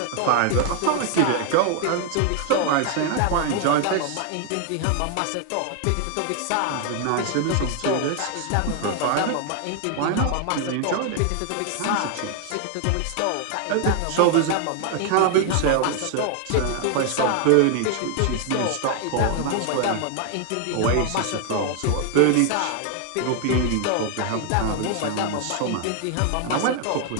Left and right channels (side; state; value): both; different; correlation 0.00